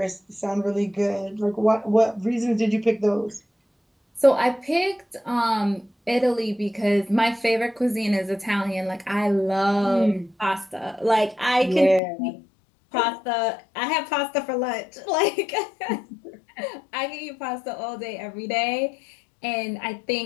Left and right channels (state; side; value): drops out; right; at 12.0 s